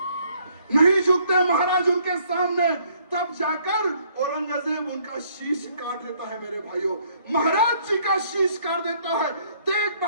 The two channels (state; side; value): inverted; both; correlation -0.65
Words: नहीं झुकते महाराज उनके सामने। तब जाकर औरंगजेब उनका शीश काट देता है मेरे भाइयों। महाराज जी का शीश काट देता है, तेग